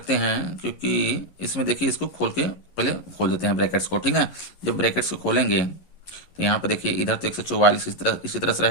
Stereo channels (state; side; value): late; right; 11 ms